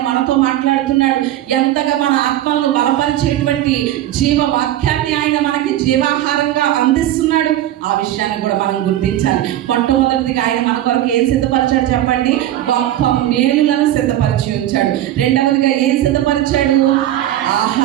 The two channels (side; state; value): left; quieter; 13.1 dB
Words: మనతో మాట్లాడుతున్నాడు, ఎంతగా మన ఆత్మలను బలపరిచేటువంటి జీవ వాక్యాన్ని ఆయన మనకి జీవాహారంగా అందిస్తున్నాడు. ఆ ఆ విషయాన్ని కూడా మనం గుర్తించాలి. మొట్టమొదటిదిగా ఆయన మన కొరకు ఏం సిద్ధపరిచాడు చెప్పండి? గొప్ప మేలులను సిద్ధపరిచి ఉంచాడు. రెండవదిగా ఏం సిద్ధపరిచాడు?